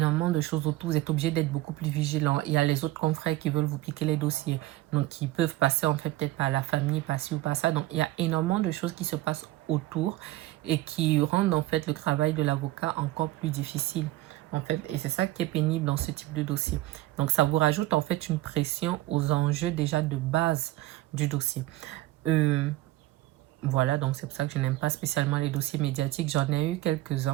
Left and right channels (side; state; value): left; quieter; 16.8 dB